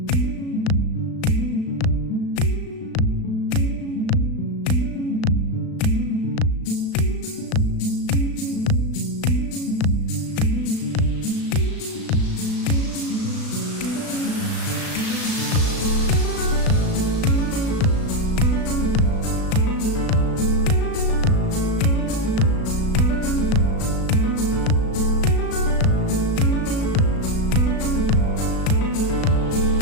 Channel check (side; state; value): right; late; 36 ms